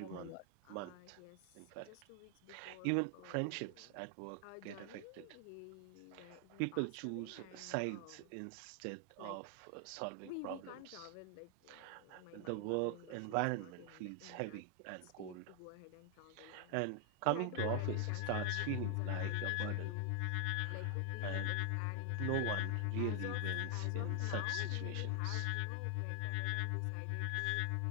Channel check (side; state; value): both; different; correlation 0.00